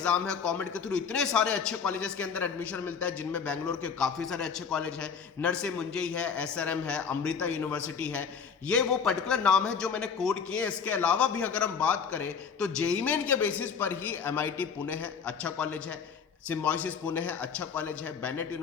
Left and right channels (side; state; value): right; quieter; 6.3 dB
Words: है। कॉमेड के थ्रू इतने सारे अच्छे कॉलेजेस के अंदर एडमिशन मिलता है, जिनमें बेंगलोर के काफी सारे अच्छे कॉलेज है, नरसे मुंजई है, एसआरएम है, अमृता यूनिवर्सिटी है। ये वो पर्टिकुलर नाम है जो मैंने कोड किए। इसके अलावा भी अगर हम बात करें तो जेईई मेन के बेसिस पर ही एमआईटी पुणे है, अच्छा कॉलेज है, सिम्बायोसिस पुणे है, अच्छा कॉलेज है, बेनेट